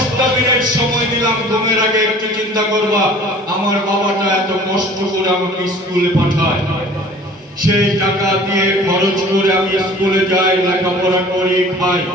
মিনিট সময় দিলাম, ঘুমের আগে একটু চিন্তা করবা আমার বাবাটা এত কষ্ট করে আমাকে স্কুলে পাঠায়, সেই টাকা দিয়ে খরচ করে আমি স্কুলে যাই, লেখাপড়া করি, খাই।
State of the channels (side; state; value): both; normal; correlation 0.47